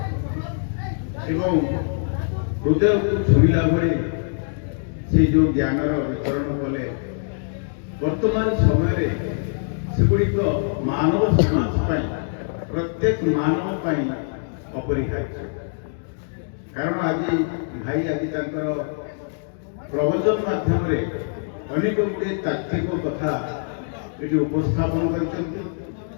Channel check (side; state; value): right; silent; digital silence